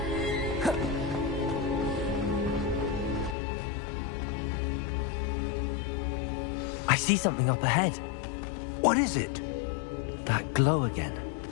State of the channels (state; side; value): drops out; right; at 3.4 s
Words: I see something up ahead. What is it? That glow again,